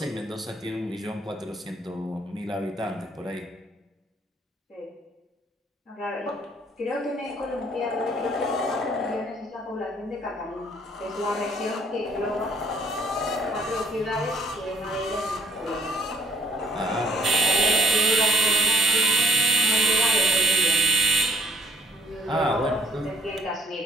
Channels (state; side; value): normal; both; correlation 0.63